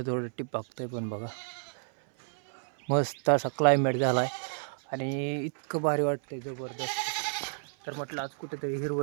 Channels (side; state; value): left; silent; 57 dB below the other